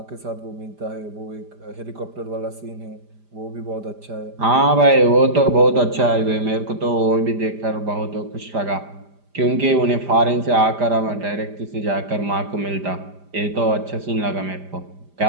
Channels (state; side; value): late; left; 5.0 ms